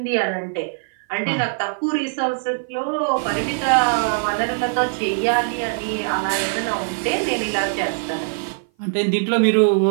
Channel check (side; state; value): left; silent; 57 dB below the other